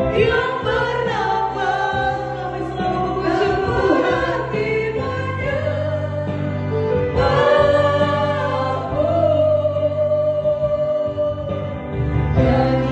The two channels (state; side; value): identical; both; correlation 1.00